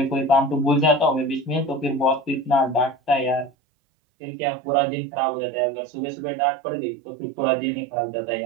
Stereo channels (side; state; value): left; drops out; at 3.5 s